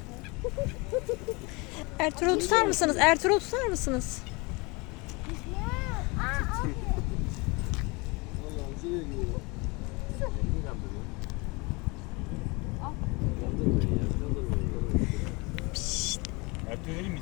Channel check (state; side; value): quieter; right; 27.0 dB